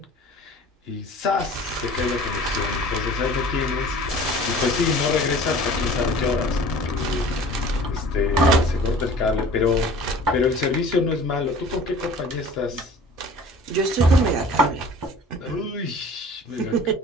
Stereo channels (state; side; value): normal; both; correlation 0.46